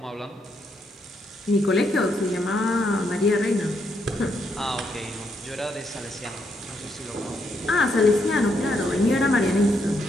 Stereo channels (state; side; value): normal; both; correlation 0.77